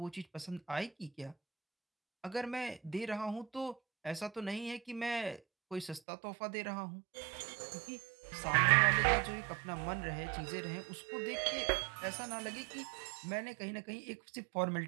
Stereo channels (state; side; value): drops out; left; at 6.0 s